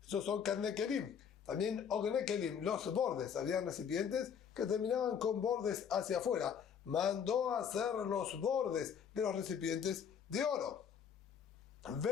Esos son karne kelim. También ogne kelim, los bordes. Habían recipientes que terminaban con bordes hacia afuera. Mandó a hacer los bordes de los recipientes de oro.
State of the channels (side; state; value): right; quieter; 7.5 dB